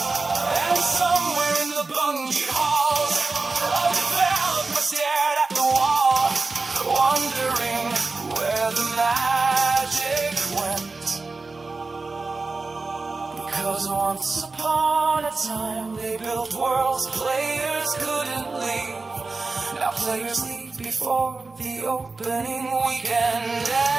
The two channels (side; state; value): left; quieter; 3.8 dB